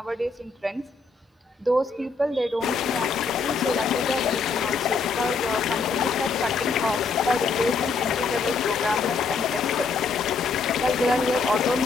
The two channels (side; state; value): right; quieter; 4.6 dB